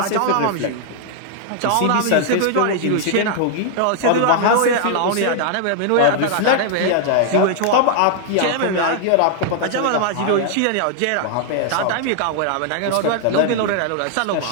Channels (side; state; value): both; different; correlation 0.00